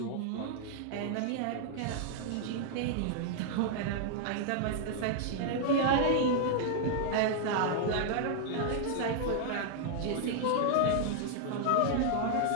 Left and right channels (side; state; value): both; different; correlation 0.00